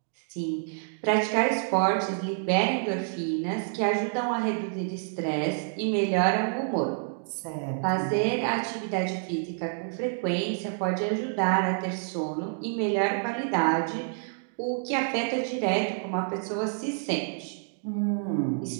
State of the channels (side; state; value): left; silent; digital silence